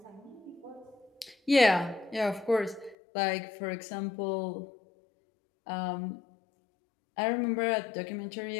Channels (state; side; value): drops out; right; at 3.0 s